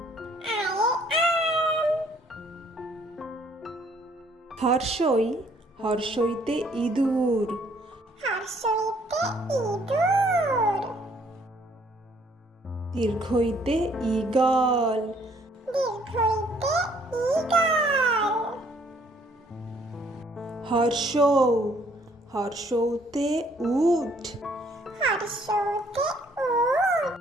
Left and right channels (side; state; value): both; normal; correlation 0.63